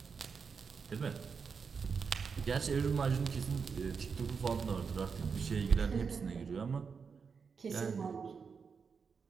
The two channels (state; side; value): quieter; left; 5.7 dB